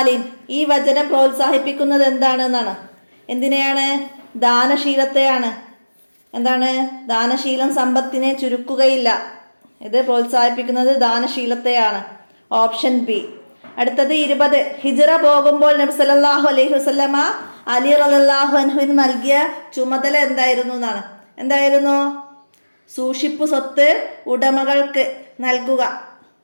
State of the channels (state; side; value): inverted; both; correlation -1.00